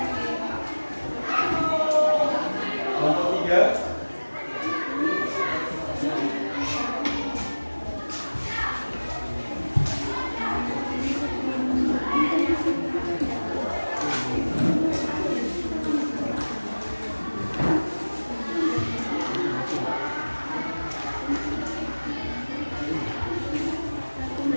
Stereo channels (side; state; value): both; inverted; correlation -1.00